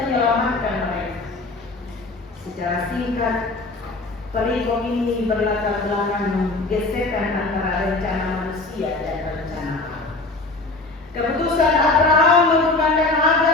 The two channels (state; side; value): quieter; right; 3.2 dB